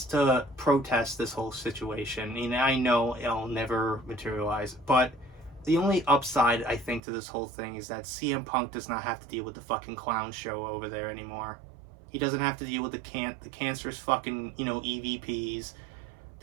to protest this whole situation. I know it'll never materialize, but the only upside I think to this whole thing is that CM Punk does not have to deal with the fucking clown show over there anymore. He doesn't have to deal with the cancerous fucking, you know, EVPs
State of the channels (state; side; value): drops out; left; at 7.0 s